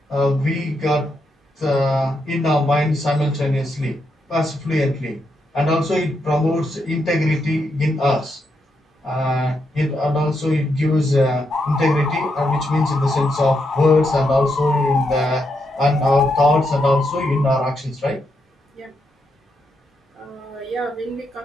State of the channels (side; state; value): both; normal; correlation 0.81